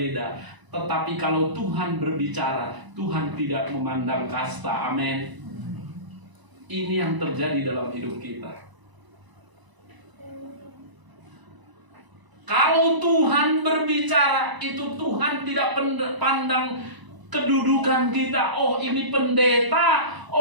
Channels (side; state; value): left; late; 1.0 ms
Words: Tetapi kalau Tuhan berbicara, Tuhan tidak memandang kasta. Amin. Ini yang terjadi dalam hidup kita. Kalau Tuhan berbicara, itu Tuhan tidak pandang kedudukan kita. Oh, ini pendeta,